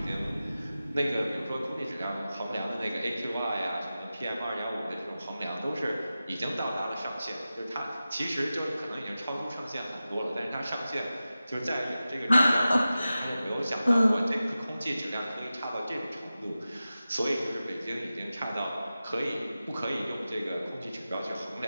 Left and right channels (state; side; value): inverted; both; correlation -0.94